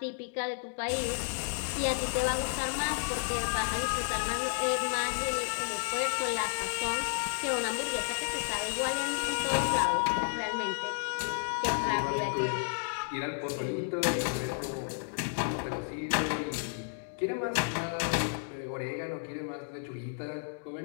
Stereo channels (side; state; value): right; silent; digital silence